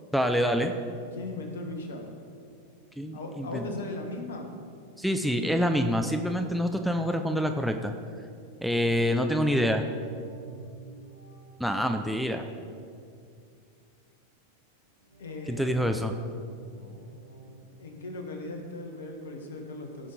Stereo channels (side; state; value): both; normal; correlation 0.69